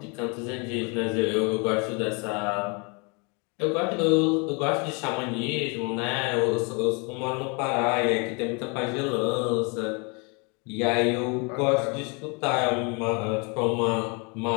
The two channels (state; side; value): quieter; right; 32.6 dB